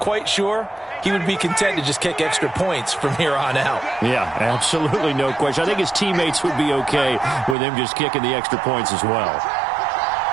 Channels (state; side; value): drops out; left; at 7.6 s